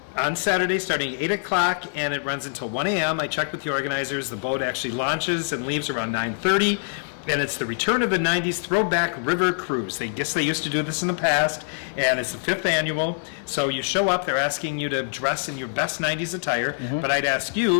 on Saturday starting at 8 o'clock, and it runs until 1 a.m. I checked with the organizers. The boat actually launches and leaves around 9:30, and it's the return of the 90s Throwback River Cruise. They guess they used to do this in the past, and it's the 5th annual. So you show up, they're asking you to dress in your best 90s attire, but I'd ask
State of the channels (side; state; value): right; silent; digital silence